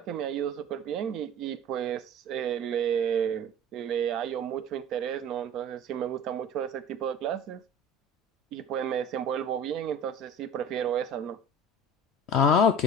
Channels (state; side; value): normal; both; correlation 0.39